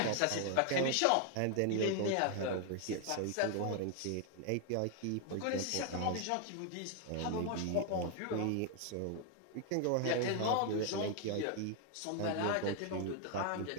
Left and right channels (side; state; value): both; different; correlation 0.00